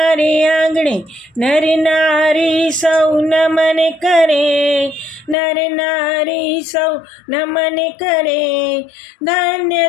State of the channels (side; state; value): right; drops out; at 5.4 s